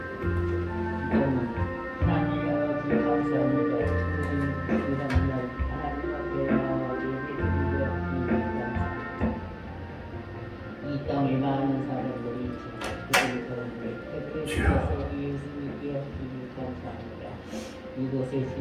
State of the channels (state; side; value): identical; both; correlation 1.00